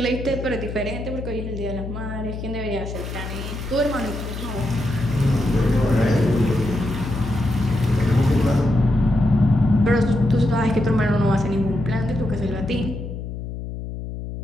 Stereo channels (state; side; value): noise; left; hum, 7 dB below the sound